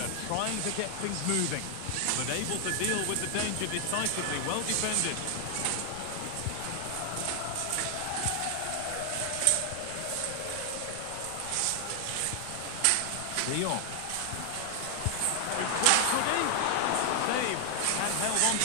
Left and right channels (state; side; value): different; both; correlation 0.00